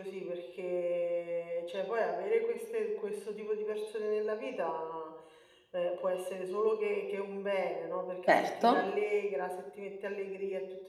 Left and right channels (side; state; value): both; identical; correlation 1.00